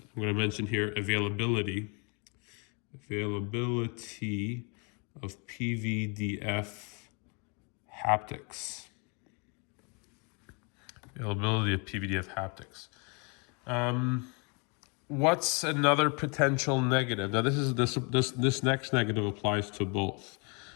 going to mention here, availability of PVDF haptics. Availability of PVDF haptics. What's another potential negative? Now, this next negative applies to both.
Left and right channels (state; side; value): quieter; right; 33.5 dB